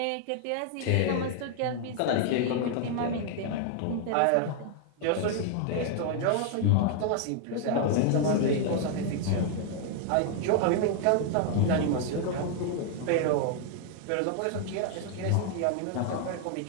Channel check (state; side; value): different; both; correlation 0.00